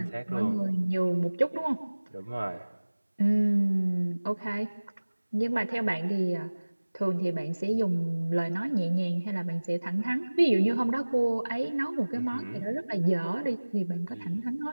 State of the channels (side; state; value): both; inverted; correlation -1.00